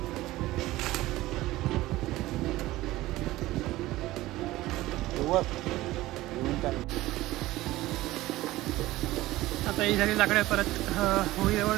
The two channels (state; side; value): quieter; left; 17.3 dB